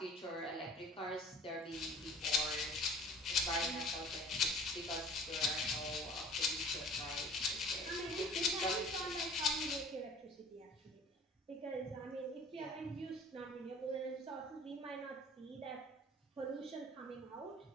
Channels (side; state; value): both; normal; correlation 0.46